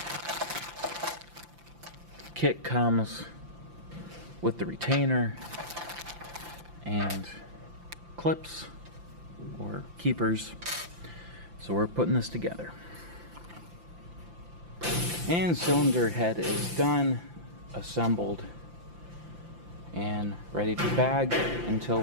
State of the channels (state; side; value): late; left; 5.8 ms